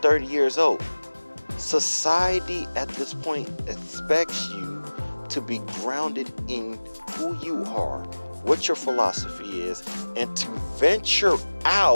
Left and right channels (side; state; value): both; inverted; correlation -1.00